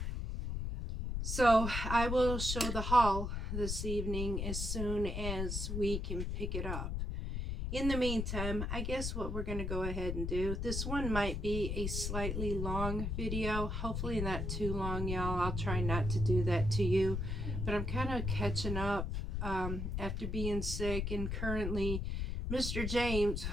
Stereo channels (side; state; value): left; noise; rumble, 2 dB below the sound